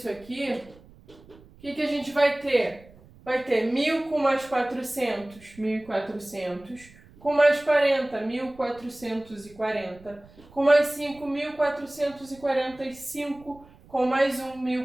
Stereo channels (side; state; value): right; noise; rumble, 24 dB below the sound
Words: aqui, o que a gente vai ter? Vai ter 1.000 com mais 400, 1.400. Com mais 40, 1.440. Com mais 5, 1.445. Com mais 1,